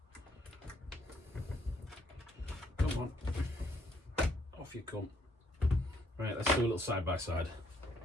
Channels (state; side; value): normal; both; correlation 0.69